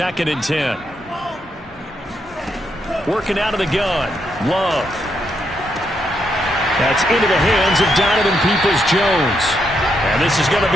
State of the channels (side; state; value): both; normal; correlation 0.79